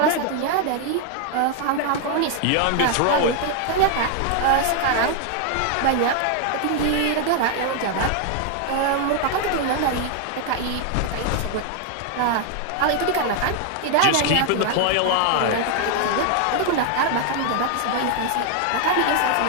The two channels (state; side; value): different; both; correlation 0.00